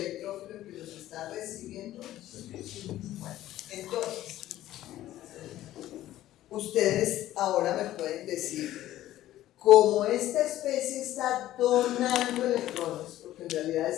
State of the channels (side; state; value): right; quieter; 14.0 dB